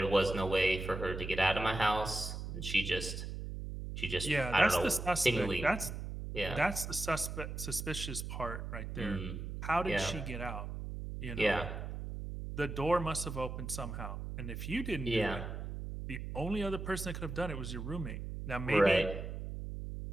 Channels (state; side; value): noise; right; hum, 6 dB below the sound